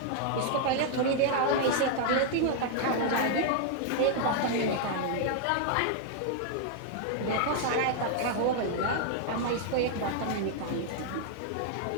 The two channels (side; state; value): both; different; correlation -0.01